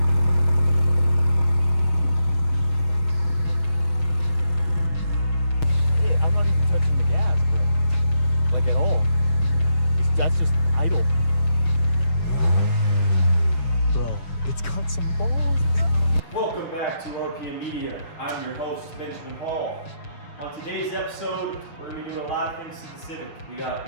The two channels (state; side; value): late; right; 6.7 ms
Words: That's just idle. Bro, it's got some balls. Welcome back to RPM Media. I'm your host, Benjamin Hall. On today's episode, we're going to be doing a lot of things to the Civic. We got